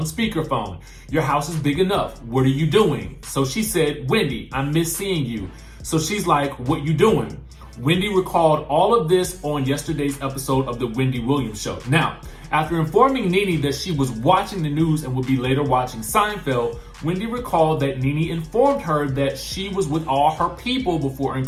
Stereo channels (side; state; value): both; identical; correlation 1.00